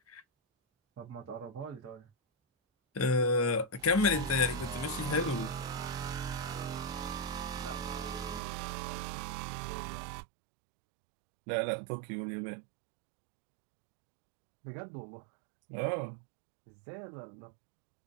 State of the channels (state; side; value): drops out; left; at 8.4 s